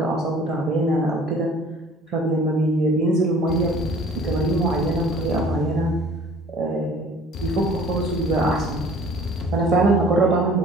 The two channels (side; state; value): both; normal; correlation 0.50